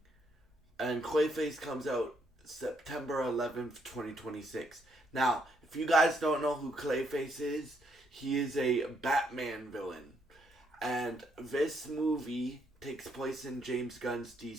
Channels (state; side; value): normal; both; correlation 0.74